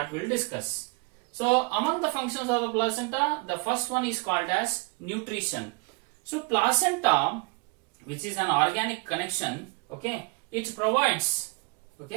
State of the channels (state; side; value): quieter; left; 31.8 dB